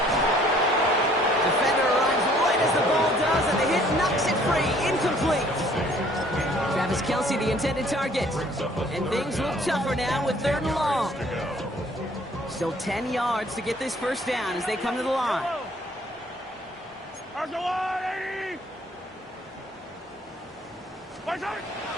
Defender arrives right as the ball does, and the hit knocks it free. Incomplete. Travis Kelce, the intended target. And things look tougher now with third and long. Still 10 yards to get this first down as they come to the line.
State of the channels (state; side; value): normal; both; correlation 0.58